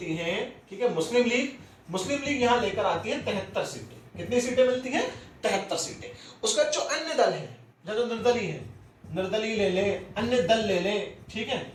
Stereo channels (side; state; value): both; identical; correlation 1.00